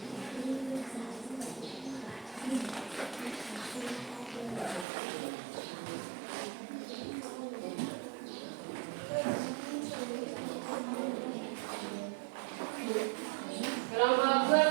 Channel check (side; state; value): left; drops out; at 4.9 s